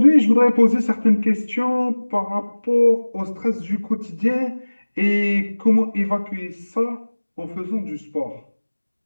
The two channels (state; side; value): inverted; both; correlation -1.00